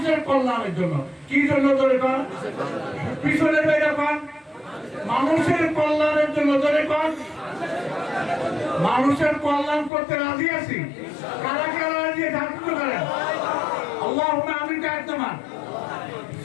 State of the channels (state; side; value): drops out; right; at 9.9 s